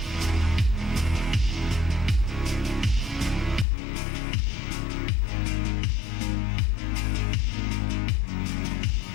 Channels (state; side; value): drops out; right; at 3.7 s